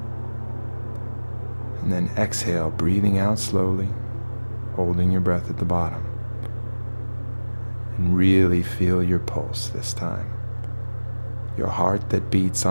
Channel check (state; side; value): inverted; both; correlation -1.00